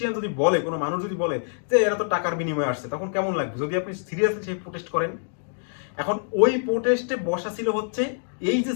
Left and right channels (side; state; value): right; silent; digital silence